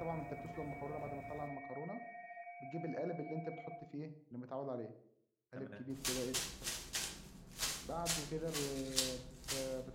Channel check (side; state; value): both; identical; correlation 1.00